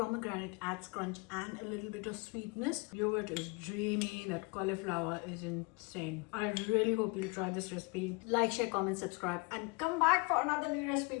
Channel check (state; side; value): quieter; right; 29.5 dB